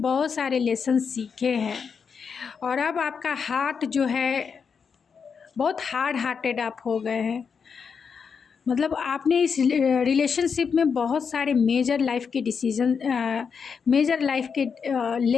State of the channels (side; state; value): right; quieter; 6.1 dB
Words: बहुत सारे लेसन सीखे हैं। और अब आपका हार्ट जो है बहुत हार्ड हार्टेड आप हो गए हैं। मतलब आपने इस रिलेशनशिप में बहुत सारे मेजर लाइफ के